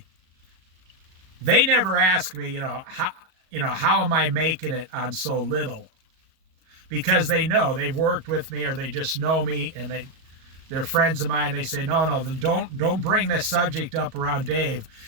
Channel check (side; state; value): left; late; 37 ms